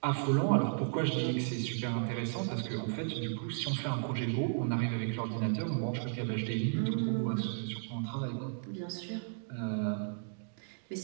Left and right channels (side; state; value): left; silent; digital silence